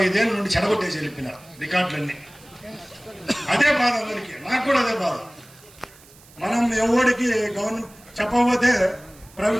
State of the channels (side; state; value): right; noise; hiss, 25 dB below the sound